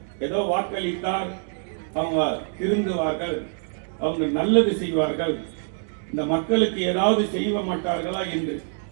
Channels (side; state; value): left; silent; digital silence